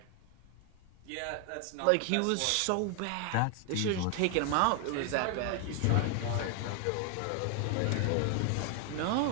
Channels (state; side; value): different; both; correlation 0.00